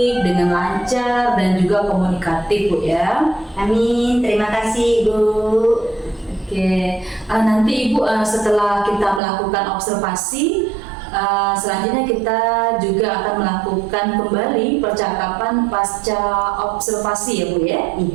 dengan lancar, dan juga komunikatif Bu ya. Amin, terima kasih Ibu. Oke, nanti Ibu setelah kita melakukan observasi, selanjutnya kita juga akan melakukan kembali percakapan pasca observasi ya Bu ya.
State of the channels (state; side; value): drops out; left; at 9.2 s